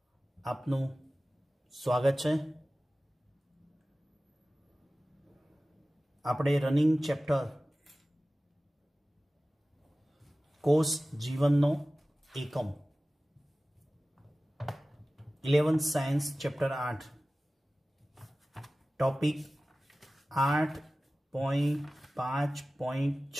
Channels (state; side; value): normal; both; correlation 0.96